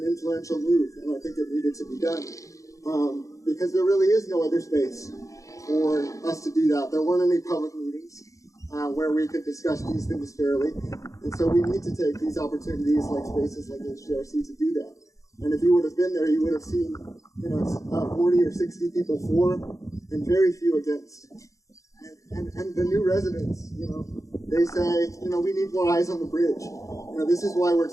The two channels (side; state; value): right; late; 0.16 ms